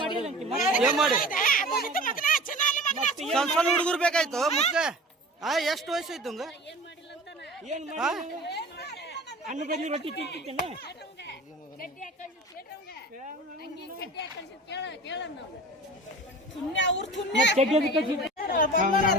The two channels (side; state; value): both; normal; correlation 0.38